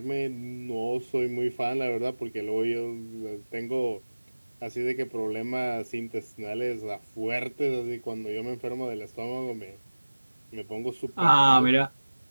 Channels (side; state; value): both; inverted; correlation -1.00